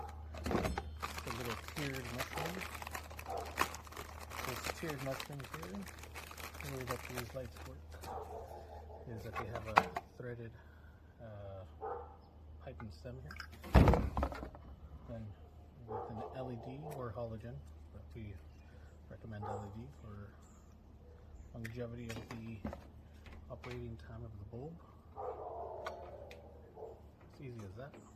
It's a little tiered mushroom. This tiered mushroom here, the way that these lights work is that they have a threaded pipe and stem here. Then with an LED or halogen, but we recommend LED for longevity of the operating time of the bulb. It's easy as that.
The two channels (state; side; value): identical; both; correlation 1.00